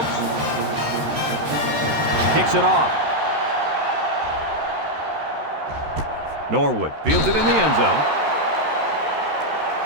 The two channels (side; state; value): left; late; 13 ms